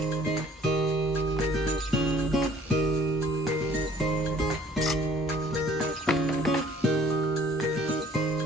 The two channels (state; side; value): normal; both; correlation 0.56